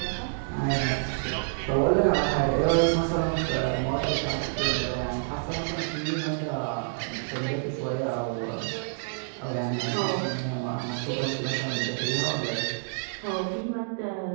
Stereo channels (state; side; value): silent; left; digital silence